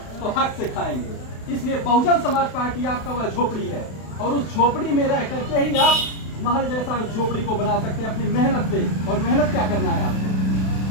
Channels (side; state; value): right; late; 32 ms